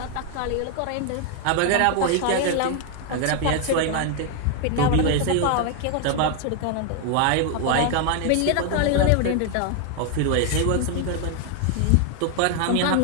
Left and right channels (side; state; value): both; different; correlation 0.01